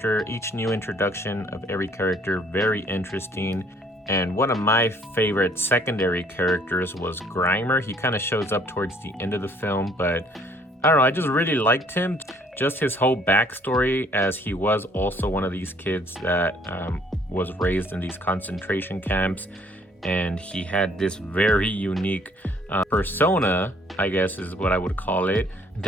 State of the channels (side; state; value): both; normal; correlation 0.60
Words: each new introduction of every character very interesting. And one of my favorite secondary characters was Grimer. He kind of shows up towards the end of the film, but I don't know, I just really liked him. Just his whole backstory, as he was also one of these kids that was raised in these concentration camps, and he had this very unique persona, I guess is what I would call it,